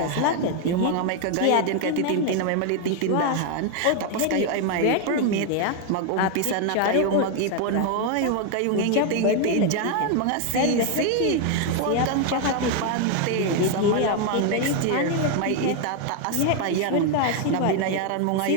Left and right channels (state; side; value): different; both; correlation 0.01